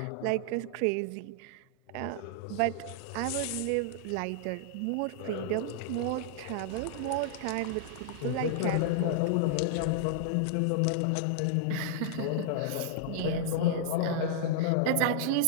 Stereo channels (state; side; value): different; both; correlation -0.01